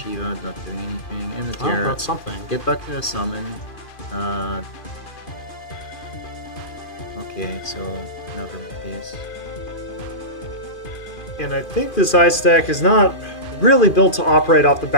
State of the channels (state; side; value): late; right; 2.4 ms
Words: not doing anything. And the Oh, Terra. that's something. Get back to the summon. Okay, so another Matthias. And I think this ice deck is not really built to operate off the